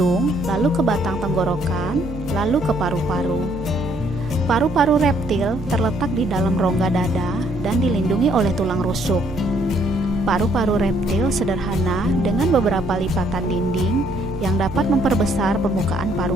lalu ke batang tenggorokan, lalu ke paru-paru. Paru-paru reptil terletak di dalam rongga dada dan dilindungi oleh tulang rusuk. Paru-paru reptil sederhana dengan beberapa lipatan dinding yang dapat memperbesar permukaan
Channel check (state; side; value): normal; both; correlation 0.67